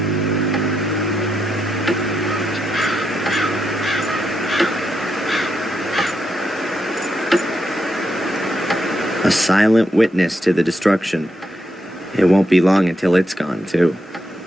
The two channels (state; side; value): normal; both; correlation 0.82